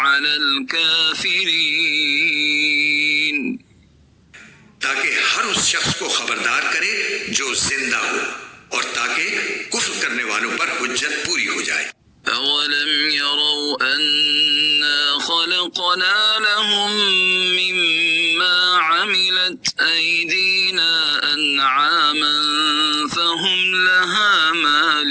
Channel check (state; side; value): identical; both; correlation 1.00